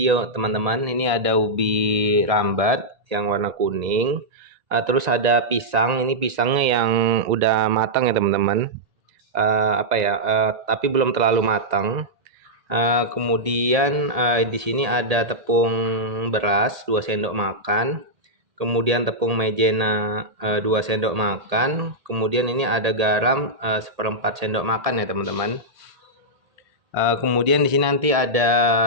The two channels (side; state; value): left; late; 1.8 ms